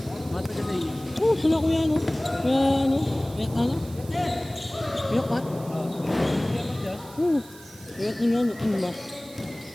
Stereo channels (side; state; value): right; noise; hiss, 20 dB below the sound